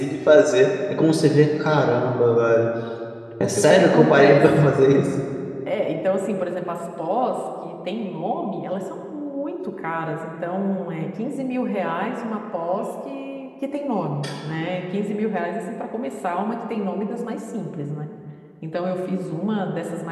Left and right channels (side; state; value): both; identical; correlation 1.00